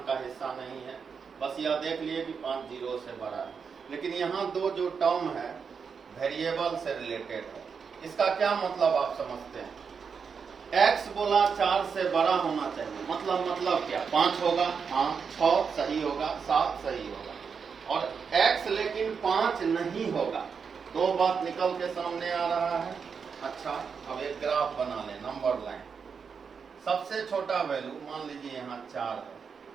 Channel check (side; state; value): left; quieter; 6.0 dB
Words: का हिस्सा नहीं है। बस यह देख लिए कि 5 0 से बड़ा है। लेकिन यहाँ दो जो टर्म है वेरिएबल से रिलेटेड है। इसका क्या मतलब आप समझते हैं? x बोला 4 से बड़ा होना चाहिए, मतलब क्या? 5 होगा, हाँ, 6 सही होगा, 7 सही होगा। और x लेकिन 5 नहीं होगा। दो बात निकल के सामने आ रहा है। अच्छा, अब एक ग्राफ बना ले, नंबर लाइन। सबसे छोटा वैल्यू मान लीजिए यहाँ 4